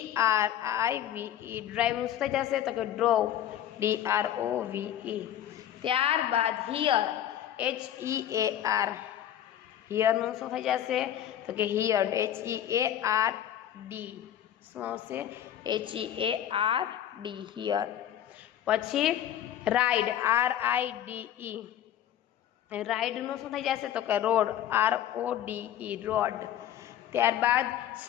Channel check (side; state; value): right; quieter; 11.0 dB